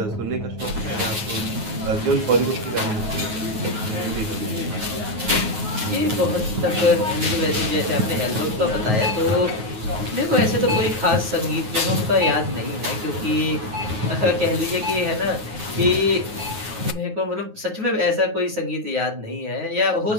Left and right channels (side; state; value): left; late; 9.4 ms